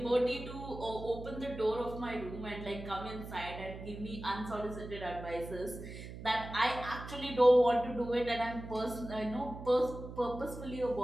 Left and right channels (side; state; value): right; noise; hum, 11 dB below the sound